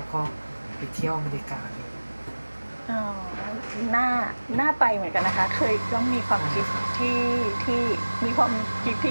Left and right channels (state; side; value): inverted; both; correlation -1.00